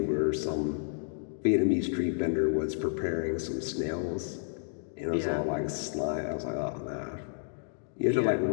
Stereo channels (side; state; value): right; silent; digital silence